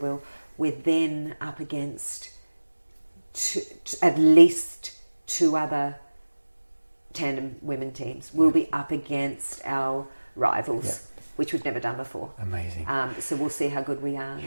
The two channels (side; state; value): both; inverted; correlation -1.00